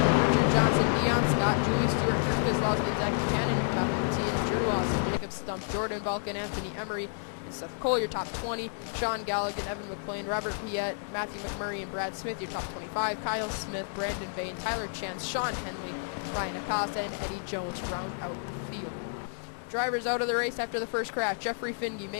Richard Johnson, Dion John Scott, Julie Stewart, Kirk Kozlowski, and Zach Buchanan, your top 15. Drew Lawson, Jacob Stump, Jordan Balkan, Anthony Emery, and Seth Cole, your top 20. Sean Galligan, Evan McLean, Robert Piette, Matthew McMurray, and Brad Smith, your top 25. Kyle Smith, Brandon Bain, Tyler Chance, Sean Henley, Ryan Acosta, and Eddie Jones round out the field. Drivers out of the race after the first crash: Jeffrey Finge,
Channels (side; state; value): right; silent; digital silence